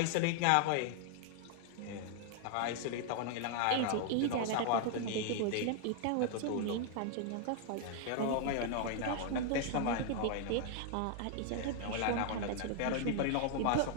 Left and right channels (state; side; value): different; both; correlation 0.00